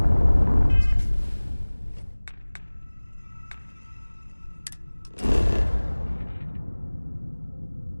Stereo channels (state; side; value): inverted; both; correlation -1.00